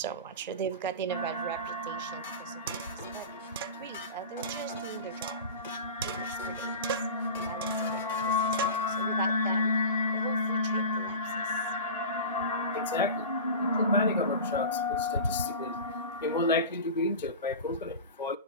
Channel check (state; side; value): inverted; both; correlation -0.31